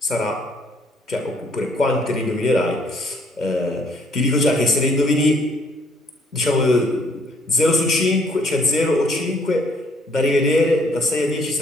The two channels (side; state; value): both; normal; correlation 0.65